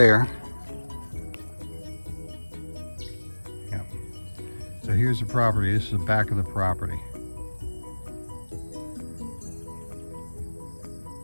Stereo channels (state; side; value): inverted; both; correlation -1.00